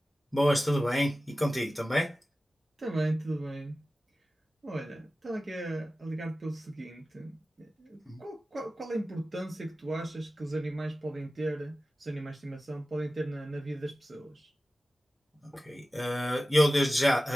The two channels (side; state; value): both; normal; correlation 0.95